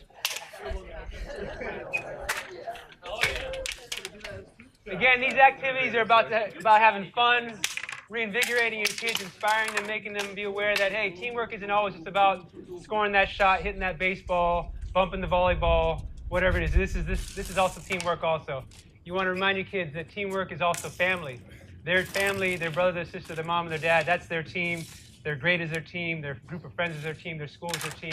Again, these activities are about having fun, reinvigorating your kids, inspiring them, making them be aware that, hey, teamwork isn't always just about scoring that shot, hitting that baseball, bumping the volleyball, whatever it is. This is also teamwork also. You want to remind your kids that teamwork is also family. Their family, their brother, their sister, their mom, and their dad, that's their team. Their grade is their team. Their group of friends is their team. Their school is their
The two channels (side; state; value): both; identical; correlation 1.00